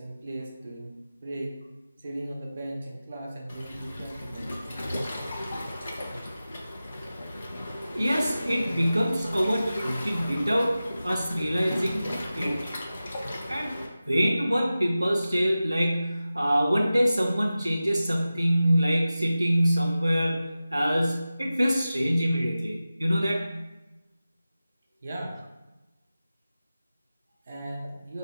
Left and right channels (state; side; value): inverted; both; correlation -0.95